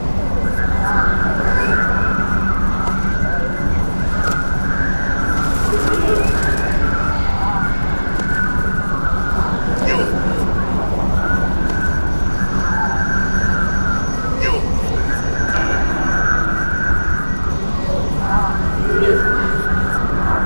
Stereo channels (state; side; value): inverted; both; correlation -1.00